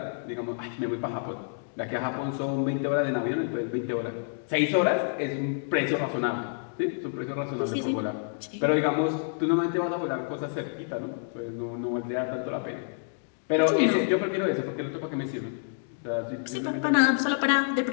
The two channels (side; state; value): right; silent; digital silence